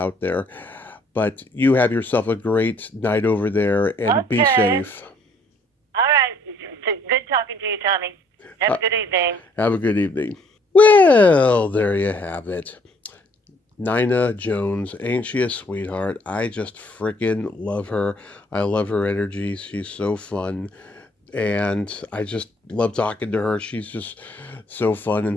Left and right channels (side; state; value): both; normal; correlation 0.63